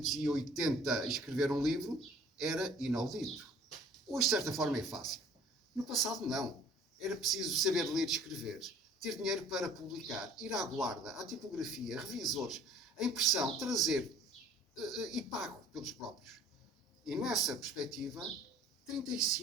escrever um livro era inaudito. Hoje, de certa forma, é fácil. No passado, não. Era preciso saber ler e escrever, ter dinheiro para publicar, ir à guarda, à tipografia, revisores, a impressão, trazer e pago pelos próprios. E nessa perspectiva,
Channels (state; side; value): normal; both; correlation 0.53